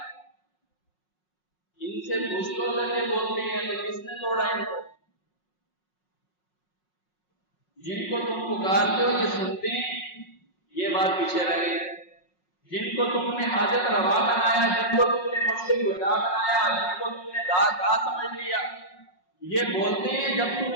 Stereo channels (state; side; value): late; right; 5.5 ms